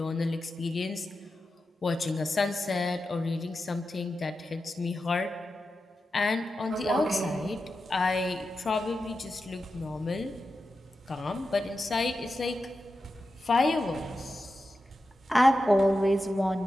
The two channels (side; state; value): both; normal; correlation 0.91